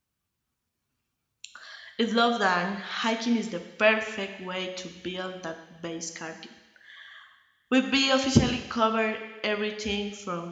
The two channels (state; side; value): identical; both; correlation 1.00